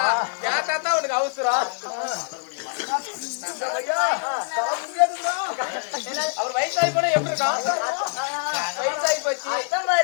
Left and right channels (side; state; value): right; silent; digital silence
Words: ஏன் தாத்தா உனக்கு அவசரம்? அவர் வயசாகி போனா எப்படி இருக்கான்? வயசாகி போச்சு